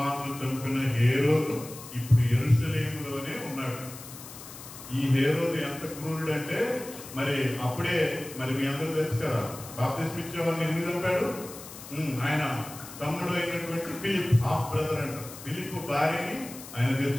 చంపిన హేరోదు ఇప్పుడు యెరూషలేములోనే ఉన్నాడు. ఈ హేరోదు ఎంత క్రూరుడు అంటే మరి అప్పుడే మరి మీ అందరూ తెలుసు కదా, బాప్తిస్మిచ్చే యోహాన్ని ఎందుకు చంపాడు? ఆయన తమ్ముడు అయినటువంటి ఫిలిప్, హాఫ్ బ్రదర్ అంటారు. ఫిలిప్ భార్యని ఆయన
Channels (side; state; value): left; noise; hiss, 14 dB below the sound